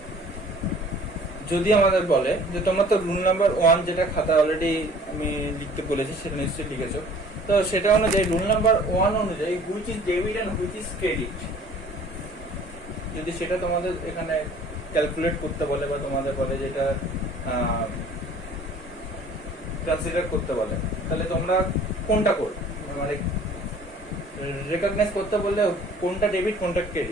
যদি আমাদের বলে যে তোমরা তো রুল নাম্বার 1 যেটা খাতা অলরেডি আমি লিখতে বলেছি সেটা নিশ্চয়ই লিখেছো, তো সেটা অনুযায়ী রুল নাম্বার 1 অনুযায়ী which is debit and which is credit, যদি সেটা তোমাদের এখানে ক্যালকুলেট করতে বলে বা তোমাদের বলে যেটা কনসিডার করতে বলে, তাহলে তোমরা কোনটা করবে? মানে রেকগনাইজ করতে বললে কোনটা ডেবিট কোনটা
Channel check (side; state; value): both; normal; correlation 0.51